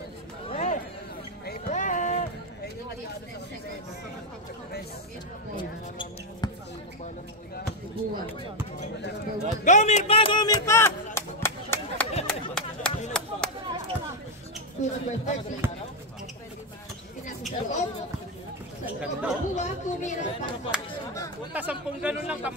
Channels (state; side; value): normal; both; correlation 0.03